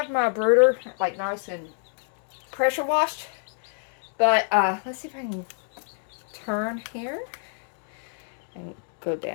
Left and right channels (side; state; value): right; silent; 60 dB below the other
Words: my brooder like nice and pressure washed. But let's see if I can turn here and go